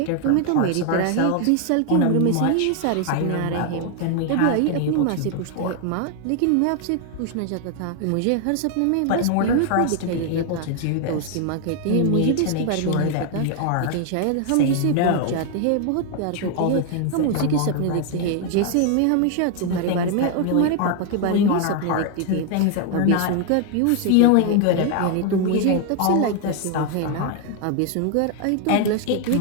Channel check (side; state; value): both; different; correlation 0.00